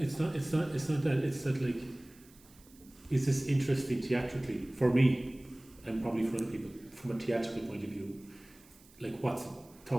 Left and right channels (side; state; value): right; noise; hiss, 26 dB below the sound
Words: it's not that. It's that, like, is this interesting theatrically for me and probably for other people from a theatrical point of view? Like, what's